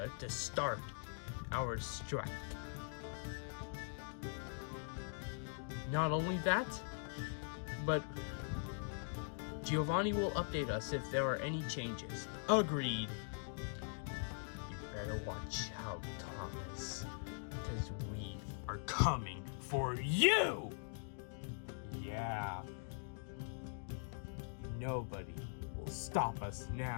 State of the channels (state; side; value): silent; right; digital silence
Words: to start our strike. Not only that, but Giovanni will update us if there are any changes. Agreed. You better watch out, Thomas, because we are coming for you! Yeah. Nobody will stop us